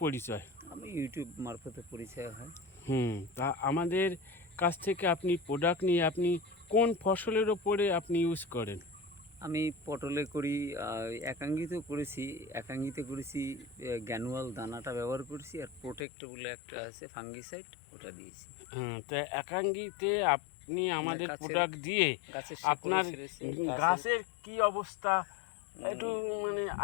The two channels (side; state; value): right; drops out; at 16.1 s